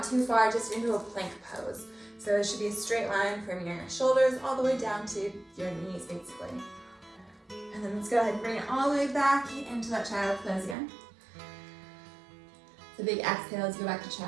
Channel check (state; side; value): drops out; left; at 10.8 s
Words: too far, just into a plank pose. So it should be a straight line from your shoulders all the way down to your knees, basically. And then let's go ahead and bring it all the way back into that child pose again. So big exhale as you go back to